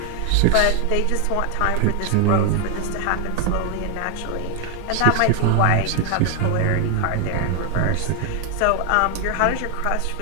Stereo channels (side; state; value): both; different; correlation 0.01